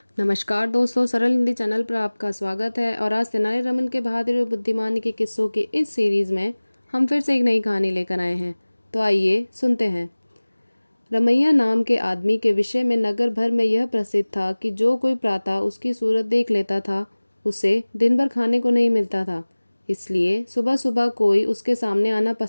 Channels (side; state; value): both; inverted; correlation -1.00